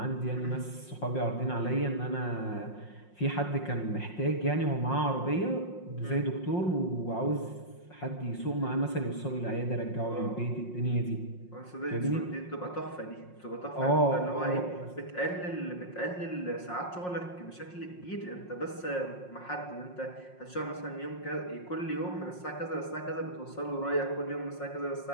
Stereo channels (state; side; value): late; right; 5.6 ms